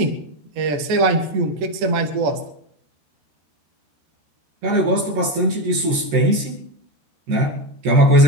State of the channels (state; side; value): late; left; 13 ms